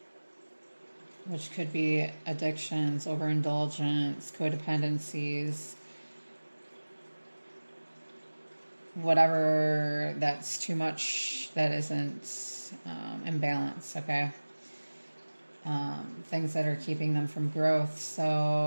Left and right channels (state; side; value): inverted; both; correlation -1.00